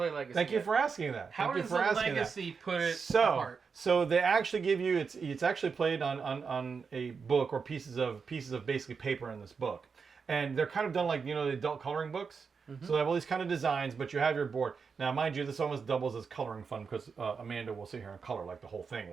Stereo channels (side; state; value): left; quieter; 5.5 dB